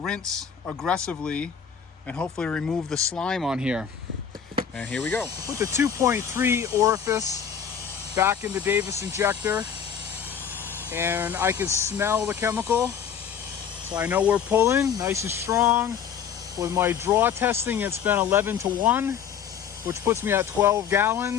aggressively and hopefully remove the slime on here. And here we go. Put the 2.3 orifice back in the Davis injector and I can smell the chemical. So I know we're pulling nice and strong. With my draw testing, it's been 11-to-1, which puts me at 12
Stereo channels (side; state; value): right; quieter; 7.9 dB